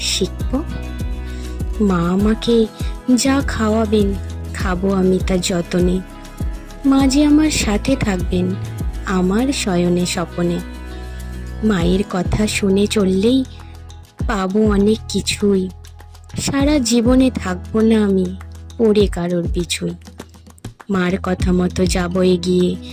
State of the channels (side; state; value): both; identical; correlation 1.00